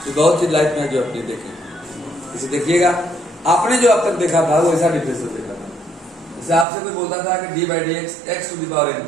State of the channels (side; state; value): left; drops out; at 6.7 s